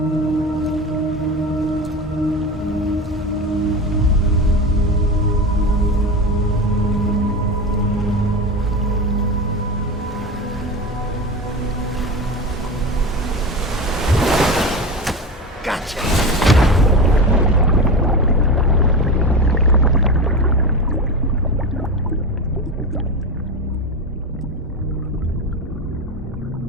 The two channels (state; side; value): normal; both; correlation 0.23